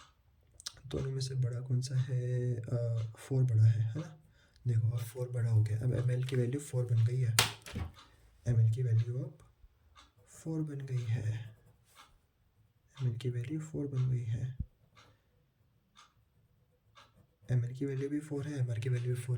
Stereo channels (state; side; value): identical; both; correlation 1.00